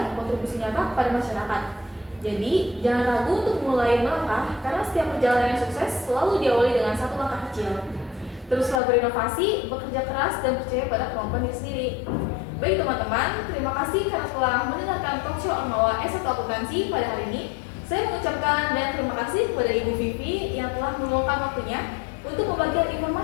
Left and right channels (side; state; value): right; drops out; at 8.8 s